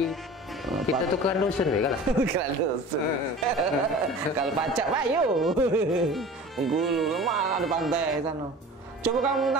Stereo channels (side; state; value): both; normal; correlation 0.39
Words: Kita tuh kan dusun ya kan? Kan dusun. Kalau pacak pak yuk. Bengkulu lemah ada pantai sana. Coba kamu